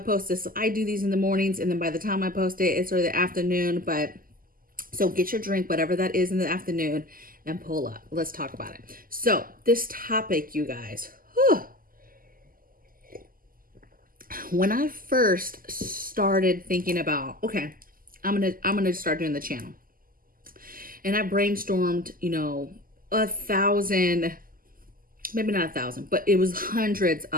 this, I do these in the mornings, and then by the time I post it, it's sort of the afternoon. But so get your drink, whatever that is in the afternoon, and pull up. Let's talk about it. So, this topic, you guys. When I first started thinking about, okay, I'm gonna start doing the channel, and I brainstormed, you know, 1,000, maybe not 1,000, but it was hundreds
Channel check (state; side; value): late; left; 0.41 ms